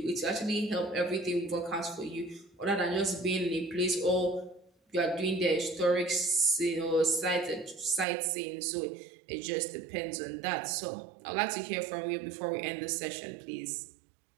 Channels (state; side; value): drops out; left; at 8.1 s